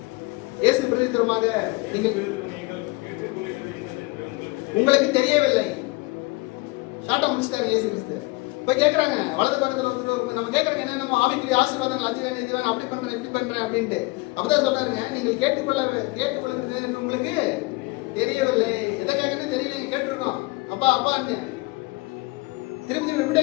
இயேசு பிரதித்திரமாக உங்களுக்கு தெரியவில்லை. ஷார்ட்டா முடிச்சிட்டாங்க இயேசு கிறிஸ்து. இப்ப கேக்குறாங்க, வலது பக்கத்துல வந்து நம்ம கேக்குறாங்க, என்ன நம்ம ஆவிக்குரிய ஆசீர்வாதங்கள் அஞ்சுவேன் இதுவேன் அப்படி பண்றேன் இப்படி பண்றேன் அப்படின்ட்டு. அப்பதான் சொல்றாருங்க, நீங்கள் கேட்டுக்கொள்ளுகிறது உங்களுக்கு தெரியவில்லை. எதை கேட்கணும் தெரியல, கேட்டிருக்கோம். அப்பா அப்பா திருப்பி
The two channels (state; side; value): quieter; right; 24.4 dB